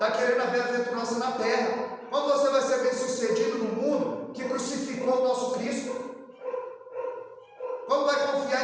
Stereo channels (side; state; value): both; identical; correlation 1.00